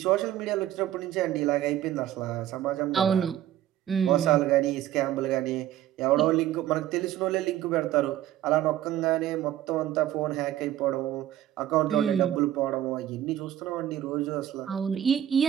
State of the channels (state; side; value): quieter; left; 12.2 dB